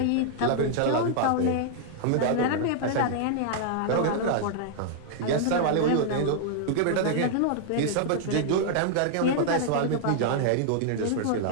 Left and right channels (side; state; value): both; different; correlation -0.01